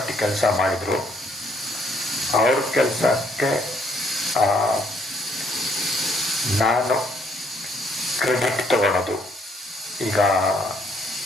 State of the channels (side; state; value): both; normal; correlation 0.68